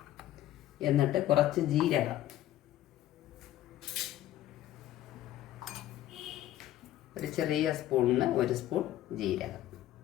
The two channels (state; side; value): quieter; right; 13.5 dB